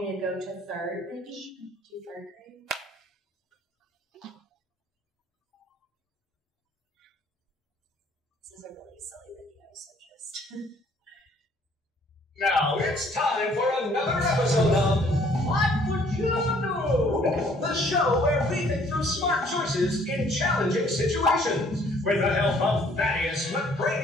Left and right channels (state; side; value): normal; both; correlation 0.60